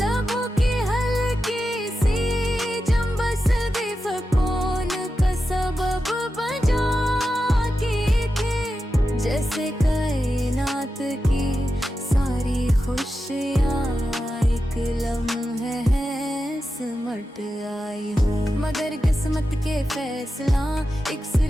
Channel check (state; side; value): normal; both; correlation 0.90